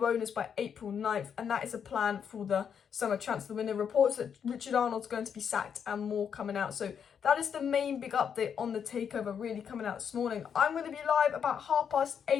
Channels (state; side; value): quieter; right; 7.5 dB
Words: owners by April 9th. And that is a plan for the summer transfer window. Reports that Richard Arnold's going to be sacked and more coming out. So that is the main big update on the takeover really coming out this morning. I'm going to be live about